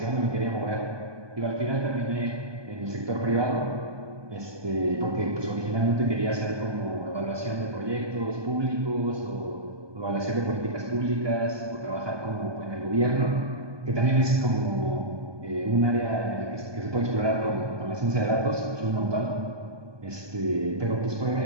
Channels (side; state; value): left; late; 1.2 ms